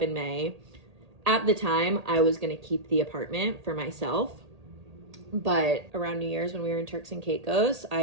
in May. At the time, I was going to keep the apartment for myself. But around New Year's when we were in Turks and Caicos,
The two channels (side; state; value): left; late; 1.8 ms